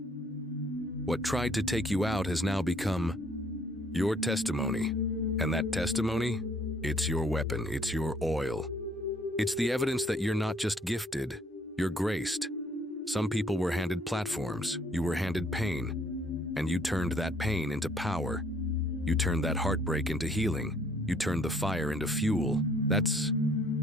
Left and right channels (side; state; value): both; normal; correlation 0.62